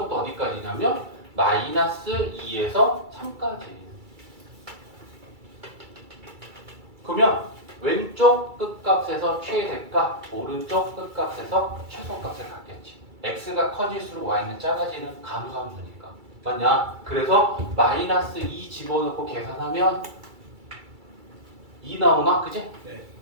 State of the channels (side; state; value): left; late; 2.3 ms